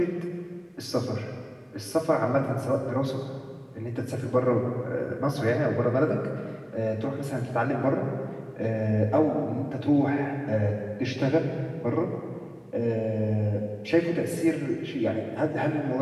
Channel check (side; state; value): both; identical; correlation 1.00